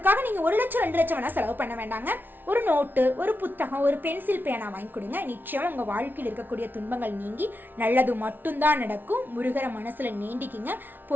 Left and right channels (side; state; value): left; late; 0.092 ms